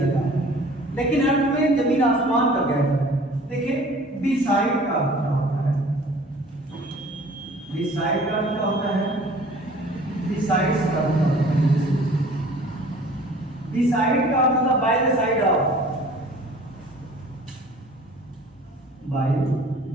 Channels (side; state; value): both; normal; correlation 0.49